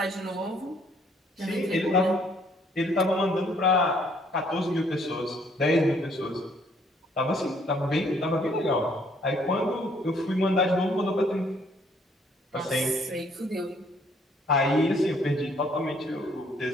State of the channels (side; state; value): both; normal; correlation 0.64